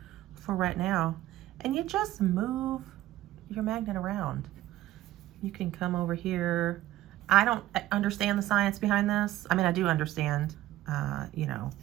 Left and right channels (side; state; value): left; quieter; 14.9 dB